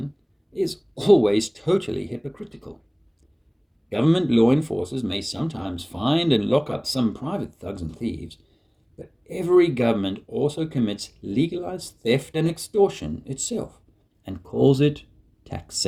is always totally hypocritical. Government law enforcers may sometimes find and lock up some private thugs and thieves, but every government also commits legalized theft and extortion itself and calls it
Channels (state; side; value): identical; both; correlation 1.00